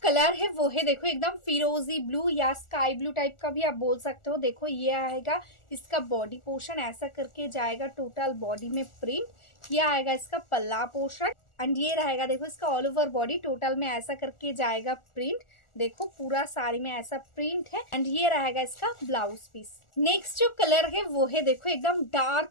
कलर है वो है देखो एकदम फिरोजी ब्लू या स्काई ब्लू टाइप का भी आप बोल सकते हो। देखो ये आएगा इसका बॉडी पोर्शन, ऐसा करके जाएगा टोटल बॉडी में प्रिंट। ये आएगा इसका पल्ला पोर्शन, एंड ये रहेगा देखो इसका ऑल ओवर बॉडी टोटल में ऐसा करके जाएगा प्रिंट। देखो पूरा साड़ी में ऐसा प्रिंट है, एंड ये रहेगा इसका ब्लाउज पीस। नेक्स्ट जो कलर है वो है देखो एकदम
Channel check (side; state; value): right; late; 1.4 ms